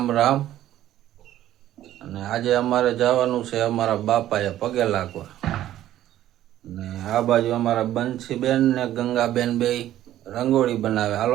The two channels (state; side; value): quieter; left; 13.0 dB